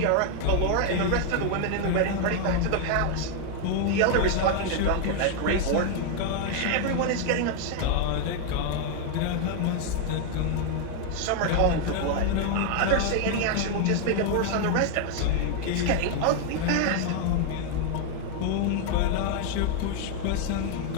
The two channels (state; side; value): different; both; correlation 0.00